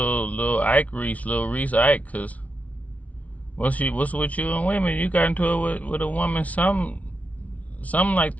Ike Reese, Lil Reese Ike, cause what's with you and women? You got into it with a woman something like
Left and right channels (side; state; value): right; late; 0.068 ms